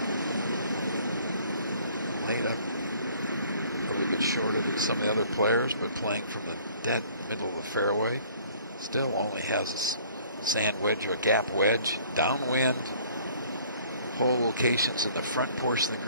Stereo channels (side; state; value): both; inverted; correlation -0.55